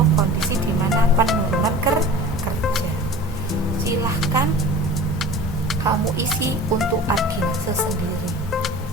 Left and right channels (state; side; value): normal; both; correlation 0.39